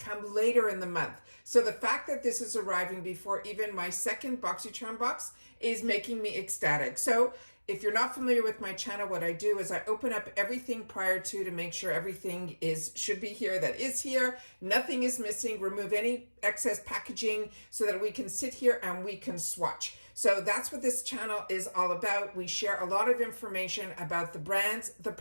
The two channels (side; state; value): both; inverted; correlation -1.00